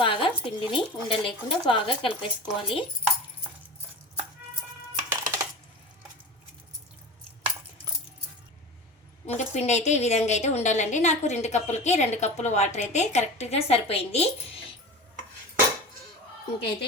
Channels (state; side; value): normal; both; correlation 0.32